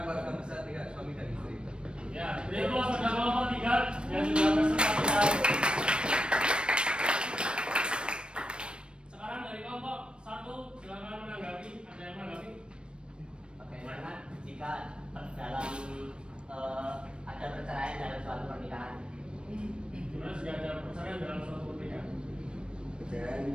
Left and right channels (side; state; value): left; late; 0.055 ms